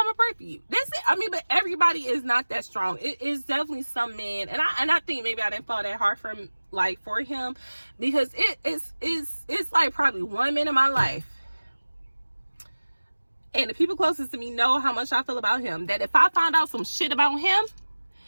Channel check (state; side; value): inverted; both; correlation -1.00